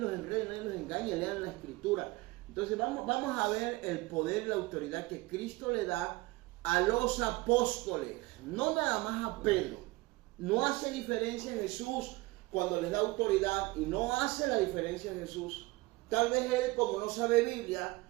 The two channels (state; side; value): quieter; left; 21.6 dB